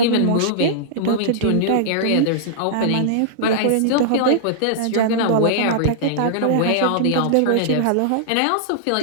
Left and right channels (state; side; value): different; both; correlation -0.02